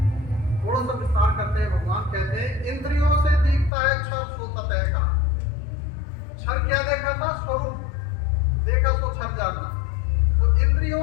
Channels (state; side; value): drops out; right; at 3.7 s